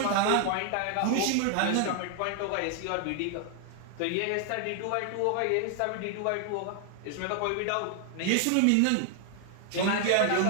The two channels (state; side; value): different; both; correlation 0.00